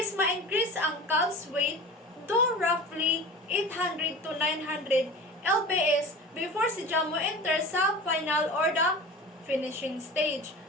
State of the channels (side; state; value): both; normal; correlation 0.35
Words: ma-increase ang calf's weight to roughly 800 to 900 lbs before si mo enter sa final or the finishing stage.